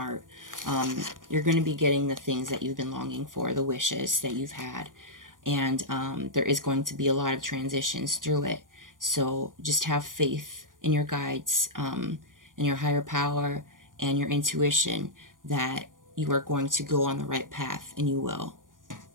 You're going to be getting the things that you've been longing for, the wishes that you've had. And there is going to be a lot of transitions through it. So just have faith in your guides, in your higher power and your intuition that you are going to go on the right path, and you will.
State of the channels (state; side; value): late; left; 0.89 ms